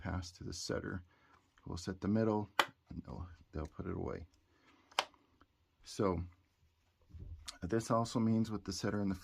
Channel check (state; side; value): identical; both; correlation 1.00